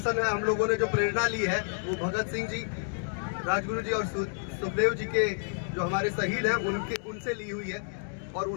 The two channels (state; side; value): silent; right; 58 dB below the other